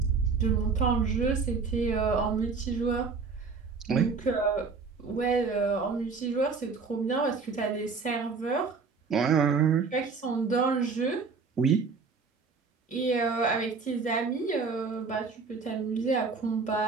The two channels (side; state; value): left; quieter; 4.8 dB